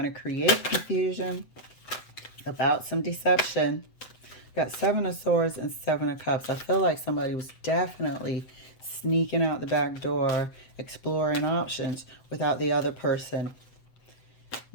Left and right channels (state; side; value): late; right; 7.9 ms